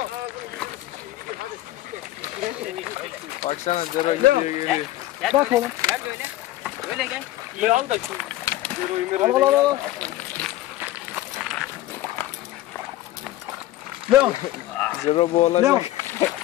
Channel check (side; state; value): right; quieter; 15.4 dB